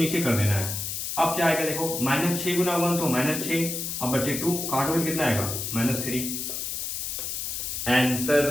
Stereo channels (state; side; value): noise; left; hiss, 4 dB below the sound